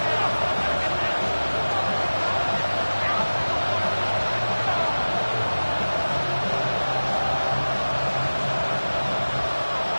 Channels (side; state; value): both; inverted; correlation -1.00